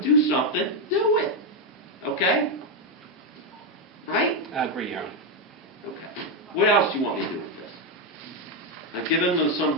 do something, do it. Okay? right? I agree, Your Honor. Okay. What else do you want me to do with this? I've given them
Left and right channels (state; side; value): normal; both; correlation 0.04